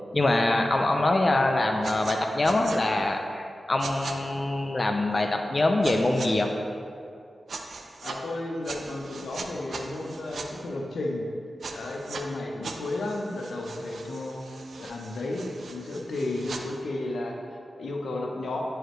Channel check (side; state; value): both; normal; correlation 0.94